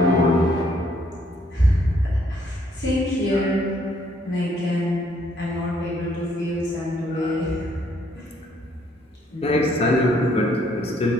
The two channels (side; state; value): both; normal; correlation 0.67